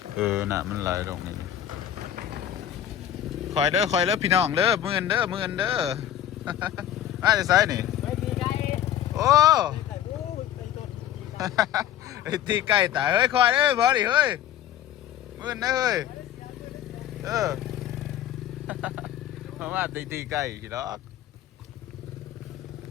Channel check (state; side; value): quieter; right; 11.1 dB